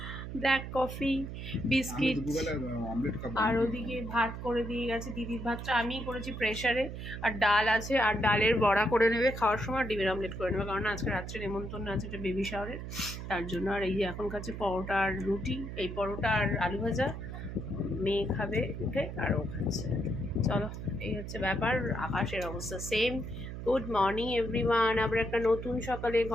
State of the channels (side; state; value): right; noise; hum, 8 dB below the sound